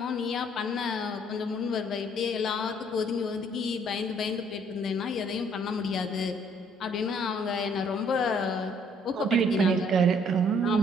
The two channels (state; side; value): normal; both; correlation 0.63